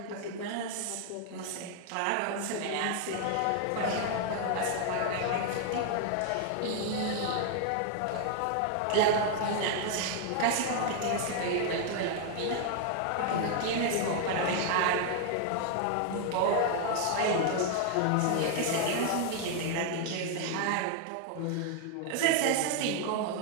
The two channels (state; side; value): different; both; correlation 0.00